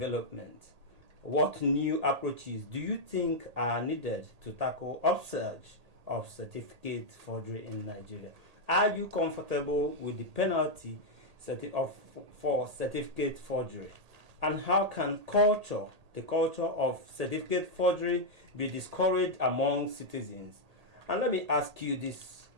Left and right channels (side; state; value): left; late; 1.8 ms